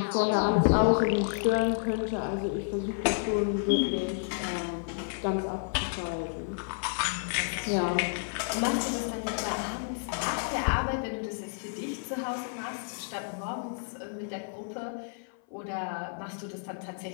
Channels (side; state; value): right; silent; 57 dB below the other